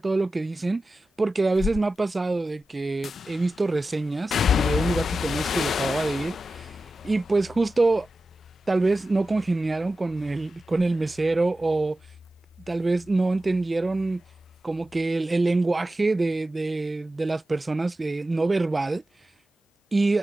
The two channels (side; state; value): both; normal; correlation 0.94